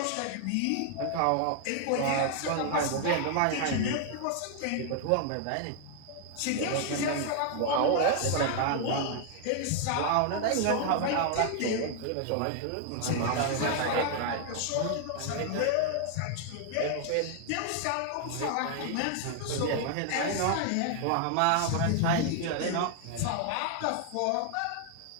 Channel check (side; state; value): both; different; correlation 0.00